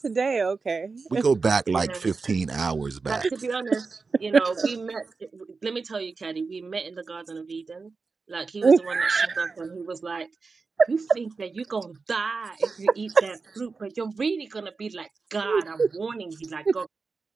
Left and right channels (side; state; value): left; quieter; 4.4 dB